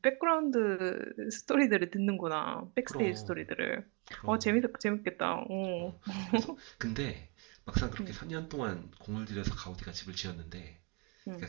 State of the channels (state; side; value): quieter; left; 32.2 dB